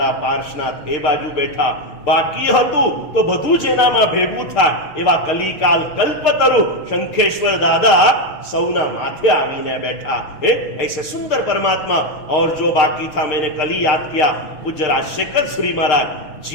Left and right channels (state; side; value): late; right; 6.3 ms